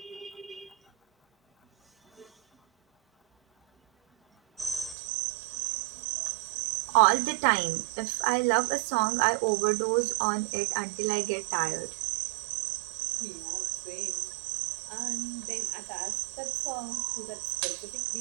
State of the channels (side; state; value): left; drops out; at 5.0 s